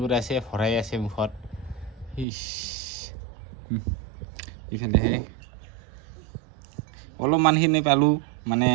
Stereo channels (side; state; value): left; drops out; at 2.2 s